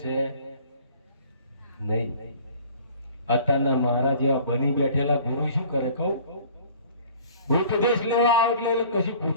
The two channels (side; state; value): both; inverted; correlation -0.49